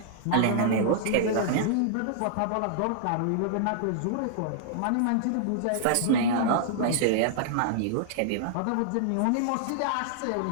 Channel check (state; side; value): different; both; correlation -0.01